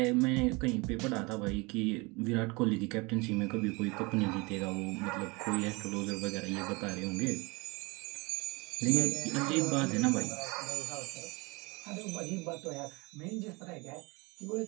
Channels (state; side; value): quieter; left; 26.4 dB